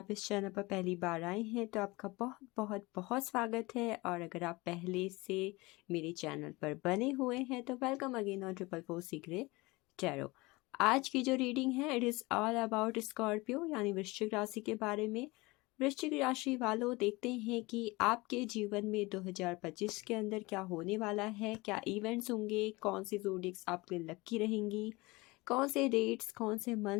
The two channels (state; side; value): quieter; right; 23.0 dB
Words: इस चैनल पर पहली बार आए हैं तो आपका बहुत बहुत बहुत स्वागत है, और अगर आप पहले से मेरे चैनल पर बने हुए हैं तो welcome again on triple four secret tarot. आज की जो रीडिंग है it is all about Scorpio यानी वृश्चिक राशि के बारे में। वृश्चिक राशि वालों, देखते हैं कि आपके जीवन में 2025 के अंदर क्या होने वाला है, क्या इवेंट्स होंगे, कौन सी ज़ोडिएक्स आपके लिए लकी रहेंगी, कौन से डेट्स, कौन से